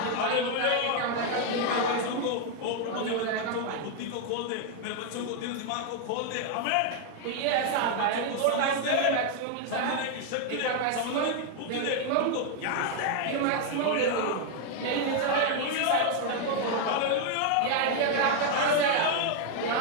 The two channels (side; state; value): both; different; correlation 0.00